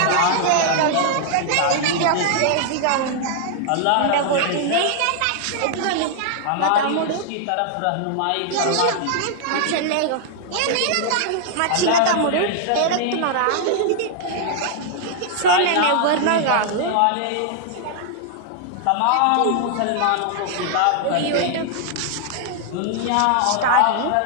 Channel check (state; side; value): different; both; correlation 0.00